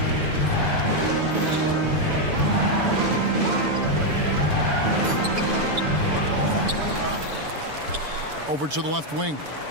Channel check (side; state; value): left; late; 6.9 ms